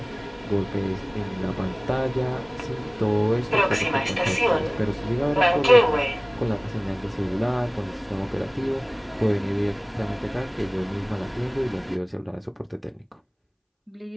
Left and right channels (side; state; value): both; identical; correlation 1.00